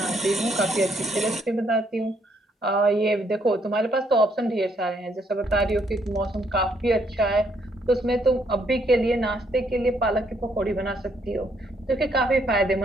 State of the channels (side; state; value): both; normal; correlation 0.71